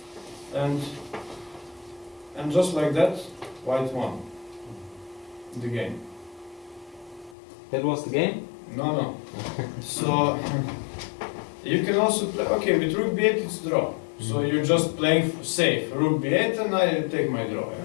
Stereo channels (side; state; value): right; drops out; at 7.4 s